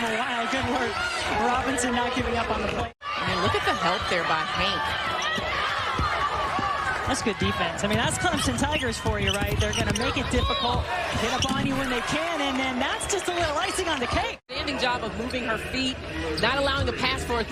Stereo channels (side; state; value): both; identical; correlation 1.00